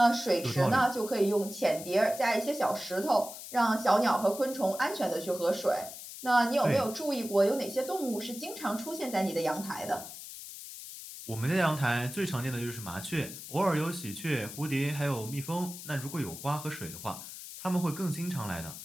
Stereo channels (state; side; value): noise; left; hiss, 12 dB below the sound